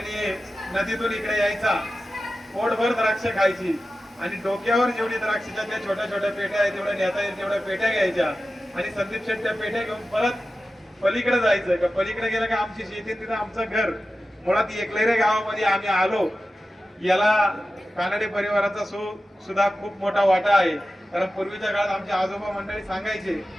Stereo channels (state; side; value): normal; both; correlation 0.93